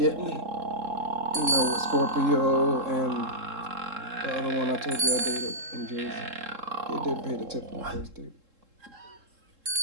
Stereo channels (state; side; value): late; left; 3.7 ms